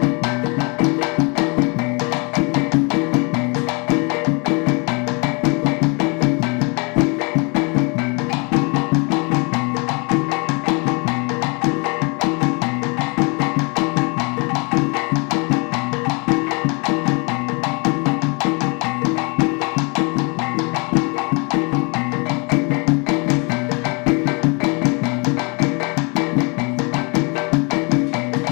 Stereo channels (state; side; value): quieter; right; 31.6 dB